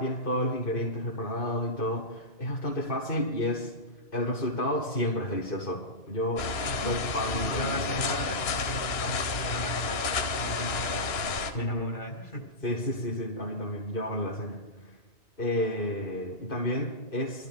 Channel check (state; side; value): late; right; 2.9 ms